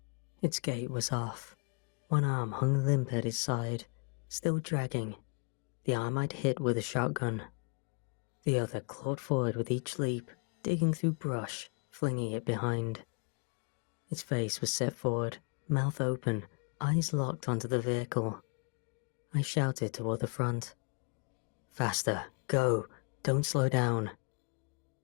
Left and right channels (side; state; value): right; quieter; 36.1 dB